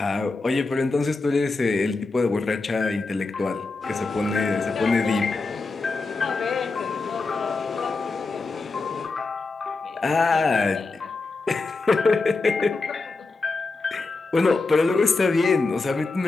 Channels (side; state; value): right; quieter; 3.8 dB